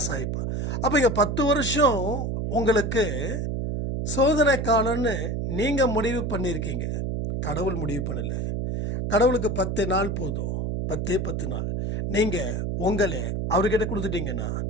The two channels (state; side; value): noise; right; hum, 1 dB below the sound